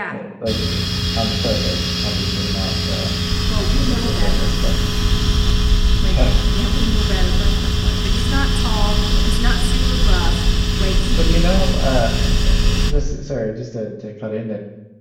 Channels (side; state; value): both; identical; correlation 1.00